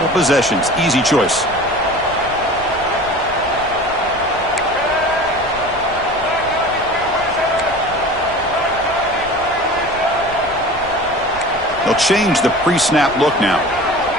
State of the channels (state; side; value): noise; left; rumble, 19 dB below the sound